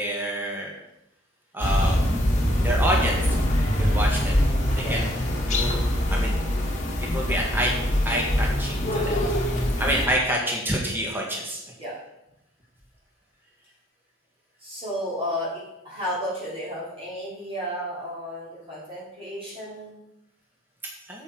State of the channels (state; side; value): normal; both; correlation 0.65